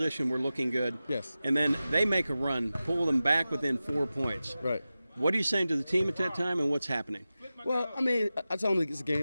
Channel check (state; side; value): inverted; both; correlation -0.95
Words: we're looking good. Yes. And then they make a run, pull them back within 4 points. Right. What are you saying to the team at that time, and what's happening? Well, I tell them it's a